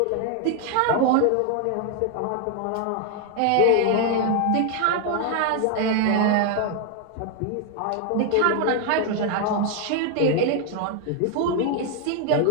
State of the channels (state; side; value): different; both; correlation 0.01